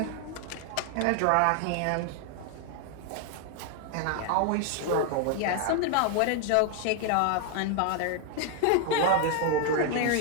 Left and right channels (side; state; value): both; different; correlation 0.00